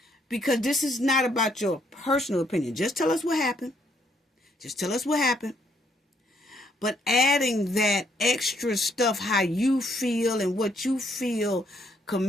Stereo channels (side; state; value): both; normal; correlation 0.71